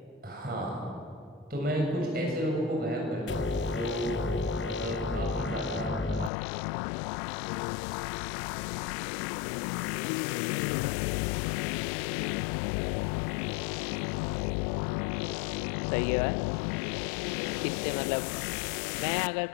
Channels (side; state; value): right; drops out; at 6.3 s